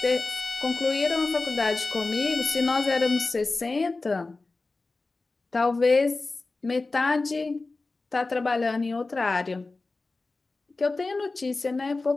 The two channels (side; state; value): right; quieter; 3.5 dB